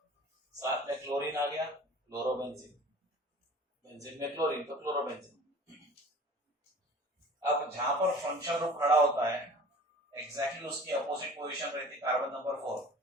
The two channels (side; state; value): both; normal; correlation 0.44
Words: साथ में क्लोरीन आ गया, क्लोरोबेंजीन, बेंजीन में क्लोरीन तो क्लोरोबेंजीन। अब जहां पर फंक्शन ग्रुप खड़ा होता है एग्जैक्टली उसकी अपोजिट पोजीशन रहती है कार्बन नंबर 4,